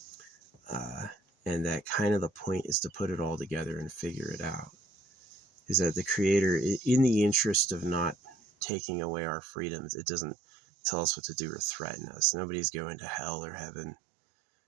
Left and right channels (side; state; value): left; drops out; at 8.7 s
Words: And that kind of the point is to put it all together and figure it out. Is that the Creator, in the interest of not taking away our freedoms, it doesn't tell us what to do or threaten us. Nobody's going to hell or heaven.